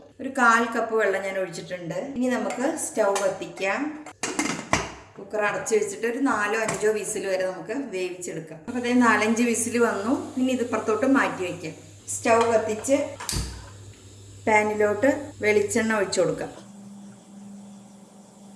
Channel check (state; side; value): identical; both; correlation 1.00